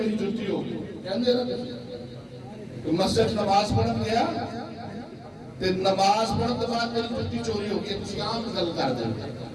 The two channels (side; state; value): both; identical; correlation 1.00